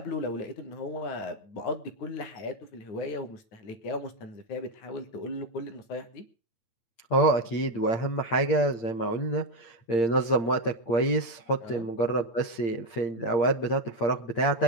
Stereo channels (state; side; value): late; right; 8.7 ms